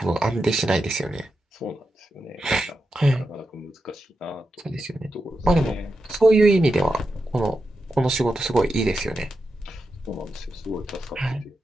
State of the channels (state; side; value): normal; both; correlation 0.88